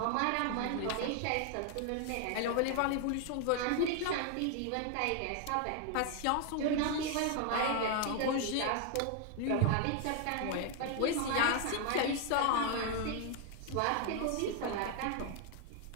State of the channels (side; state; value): both; different; correlation 0.01